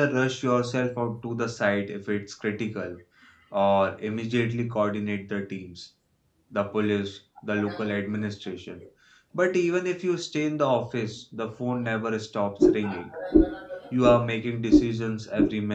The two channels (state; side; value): identical; both; correlation 1.00